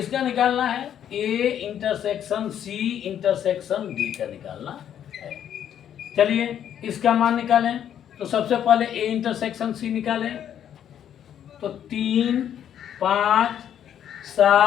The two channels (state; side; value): quieter; right; 9.8 dB